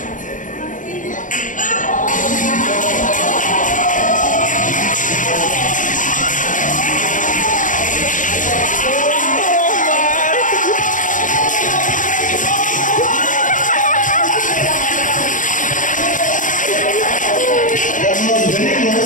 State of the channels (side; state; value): right; late; 0.38 ms